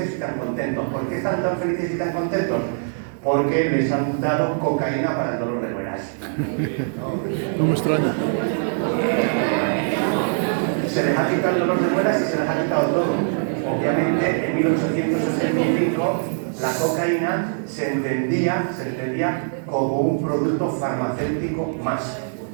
y tan contentos. ¿Por qué están tan felices y tan contentos? Porque les han dado cocaína para el dolor de muelas. No me extraña. Se les ha quitado el dolor de muelas y se les ha quitado todo. Obviamente, en 1885, la cocaína se entendía como un producto farmacéutico más,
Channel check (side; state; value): left; silent; 64 dB below the other